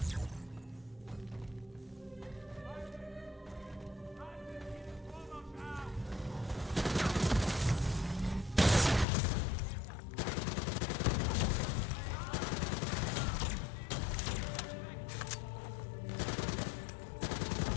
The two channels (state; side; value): drops out; right; at 9.1 s